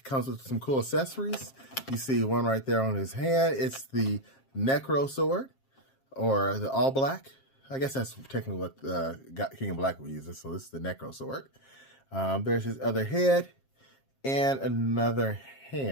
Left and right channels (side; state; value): right; late; 7.5 ms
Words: with some cool accessories. You see one right there on his hand. It's the Necro Sword, or the All Black. I guess that's technically what King of Black would use it. So this is the Necro Sword. There's his other head and another